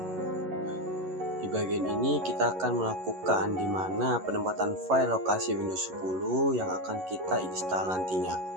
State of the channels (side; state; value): left; late; 11 ms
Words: Di bagian ini kita akan melakukan di mana penempatan file lokasi Windows 10 yang akan kita install nantinya